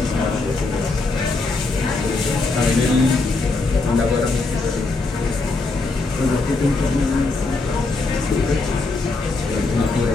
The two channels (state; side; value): quieter; right; 3.5 dB